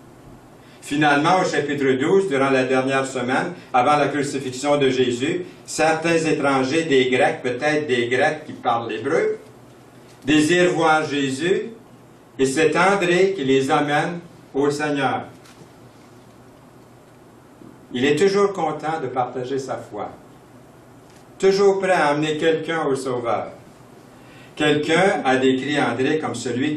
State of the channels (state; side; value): identical; both; correlation 1.00